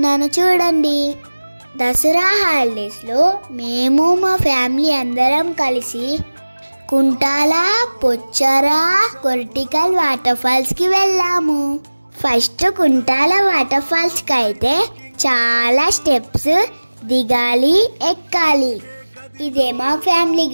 చూడండి. దసరా హాలిడేస్లో మేము మా ఫ్యామిలీ అందరం కలిసి కుంటాల, పొచ్చరా, కొర్టికల్ వాటర్ ఫాల్స్కి వెళ్ళాము. ఫస్ట్ కుంటాల వాటర్ ఫాల్స్కి అయితే చాలా స్టెప్స్ దిగాలి, ఎక్కాలి. ఇదే మా ఫ్యామిలీ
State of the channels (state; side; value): inverted; both; correlation -1.00